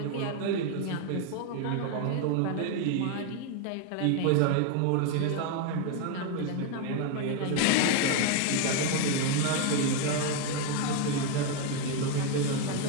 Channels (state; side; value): different; both; correlation 0.01